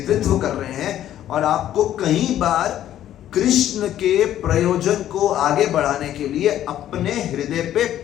कर रहे हैं और आपको कहीं बार कृष्ण के प्रयोजन को आगे बढ़ाने के लिए अपने हृदय पे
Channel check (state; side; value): quieter; right; 11.9 dB